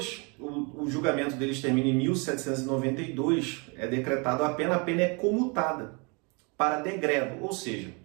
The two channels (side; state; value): left; quieter; 32.0 dB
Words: o julgamento deles termina em 1792, é decretado a pena é comutada para degredo, ou seja,